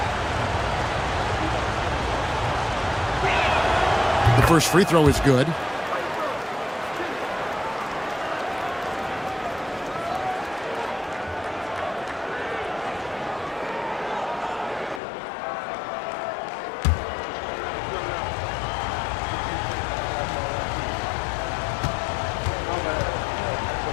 The first free throw is good.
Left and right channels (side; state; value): right; drops out; at 15.0 s